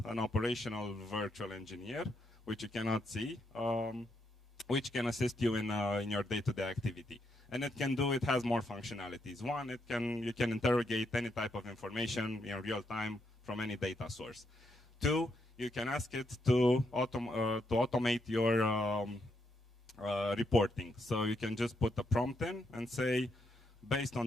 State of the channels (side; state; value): both; normal; correlation 0.78